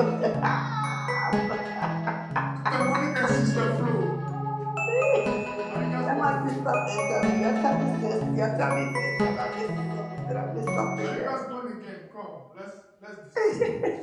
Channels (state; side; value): identical; both; correlation 1.00